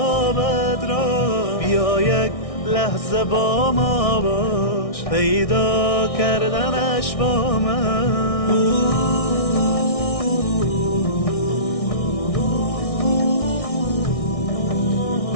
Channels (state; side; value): late; right; 1.6 ms